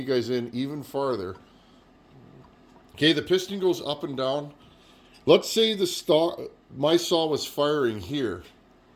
guys in even farther. Okay, the piston goes up and down. Let's say my saw was firing here.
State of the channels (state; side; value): identical; both; correlation 1.00